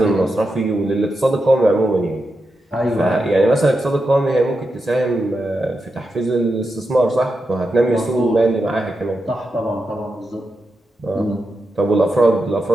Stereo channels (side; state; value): both; normal; correlation 0.87